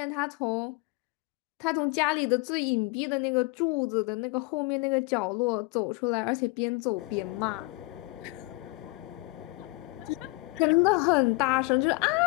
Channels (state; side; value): quieter; right; 24.3 dB